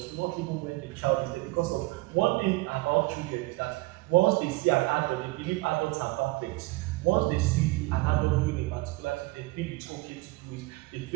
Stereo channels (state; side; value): quieter; left; 22.2 dB